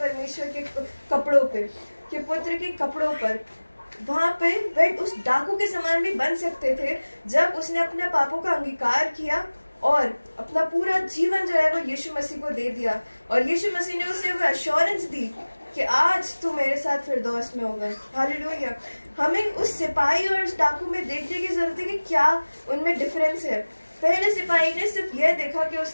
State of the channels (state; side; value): inverted; both; correlation -1.00